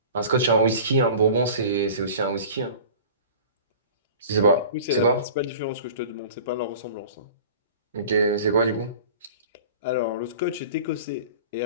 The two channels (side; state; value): both; inverted; correlation -0.41